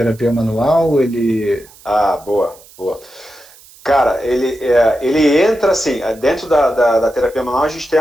manual, ele. Ah, boa, boa. Cara, ele entra assim, dentro da terapia manual a gente tem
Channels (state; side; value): noise; right; hiss, 24 dB below the sound